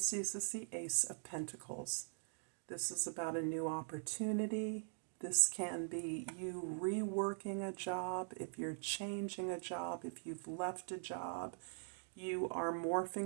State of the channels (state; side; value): silent; left; digital silence